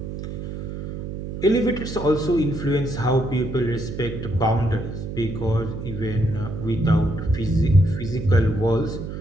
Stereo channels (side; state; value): right; noise; hum, 7 dB below the sound